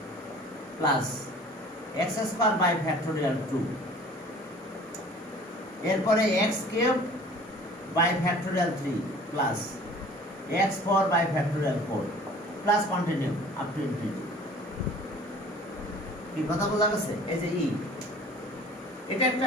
plus x square by factorial 2, এরপরে x cube by factorial 3 plus x 4 by factorial 4 plus continue up to infinity. কি কথা বোঝা গেছে? এই যে ই এটা একটা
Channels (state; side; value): normal; both; correlation 0.47